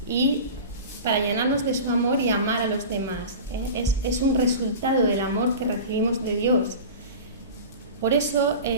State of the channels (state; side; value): inverted; both; correlation -0.33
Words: y para llenarnos de su amor y amar a los demás. Es un resultado del amor que recibimos de Dios. Por eso